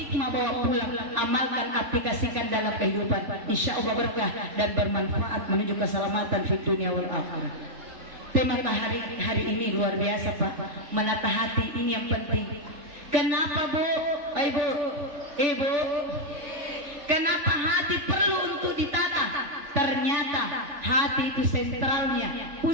bawa pulang, amalkan, aplikasikan dalam kehidupan. Insya Allah berkah dan bermanfaat menuju keselamatan di dunia wal akhirah. Tema hari ini luar biasa Pak, menata hati ini yang penting. Kenapa Bu? Ibu, kenapa hati perlu untuk ditata? Ternyata hati itu sentralnya,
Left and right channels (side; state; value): left; late; 3.5 ms